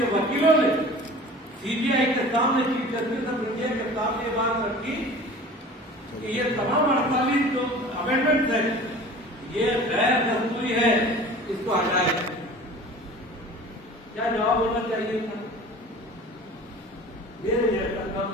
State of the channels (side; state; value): both; normal; correlation 0.42